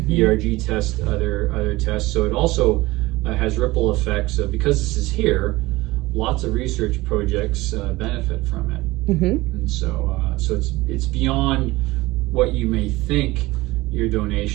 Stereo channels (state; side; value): quieter; left; 19.8 dB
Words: ERG test other tests. So it also has ripple effects. Because this is here, lots of research projects benefit from it. And so it's beyond what you may think your